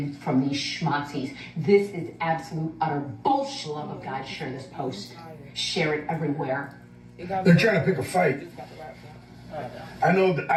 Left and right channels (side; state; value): both; identical; correlation 1.00